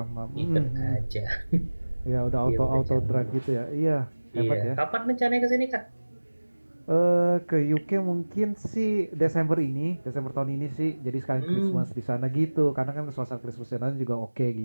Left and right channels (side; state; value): both; inverted; correlation -1.00